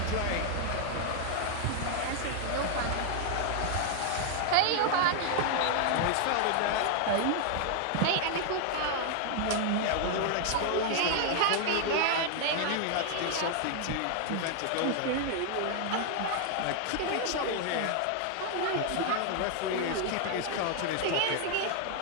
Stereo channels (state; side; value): different; both; correlation 0.00